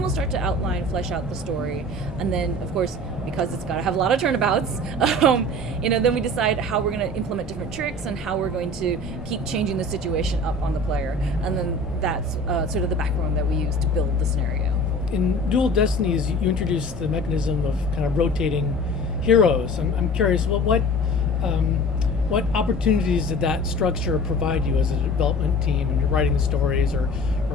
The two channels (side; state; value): both; normal; correlation 0.41